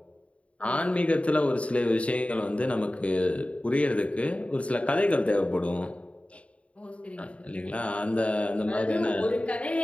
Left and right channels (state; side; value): late; right; 0.063 ms